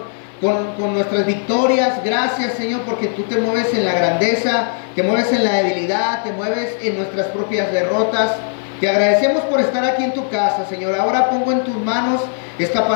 con nuestras victorias. Gracias, Señor, porque tú te mueves en la grandeza, te mueves en la debilidad, te mueves en nuestras propias derrotas. Te agradecemos por estar aquí en tu casa, Señor. Ahora pongo en tus manos esta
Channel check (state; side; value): silent; right; 62 dB below the other